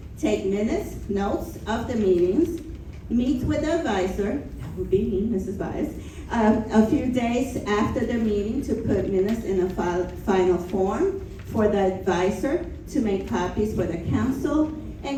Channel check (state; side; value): identical; both; correlation 1.00